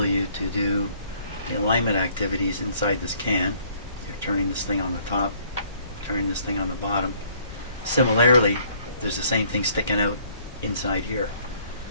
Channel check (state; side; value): inverted; both; correlation -0.62